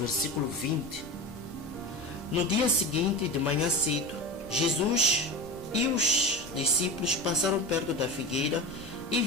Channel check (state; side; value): normal; both; correlation 0.27